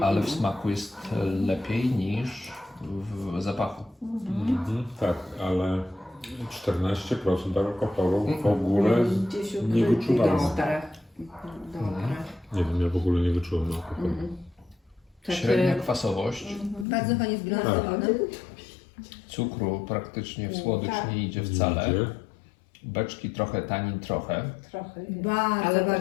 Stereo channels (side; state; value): right; drops out; at 16.9 s